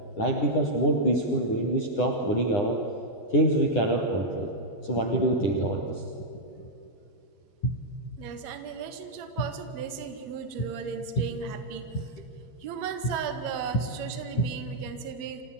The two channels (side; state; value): right; late; 9.7 ms